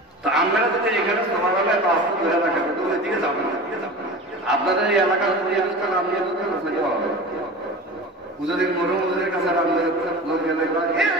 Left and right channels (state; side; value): normal; both; correlation 0.33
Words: তো আমরা যদি এখানে সমাবেলে আস্তে ধরে রাখেন তো ওই দিকে যাবেন না। আপনাদের এই এলাকার পরিবেশটা নাম নিয়ে সেটা হবে। পুজোদিন মরুমুজের কাছে লোক গেলে